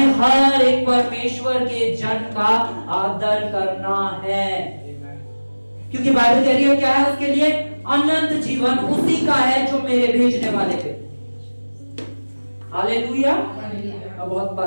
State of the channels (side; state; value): both; inverted; correlation -1.00